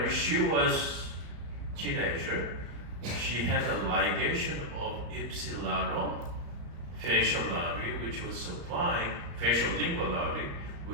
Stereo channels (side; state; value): left; late; 34 ms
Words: she was teenager, she had a ligation of ipsilateral facial artery, which was supplying facial lingual artery,